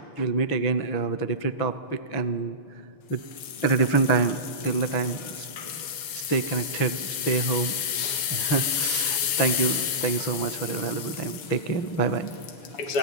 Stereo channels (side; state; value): right; late; 6.8 ms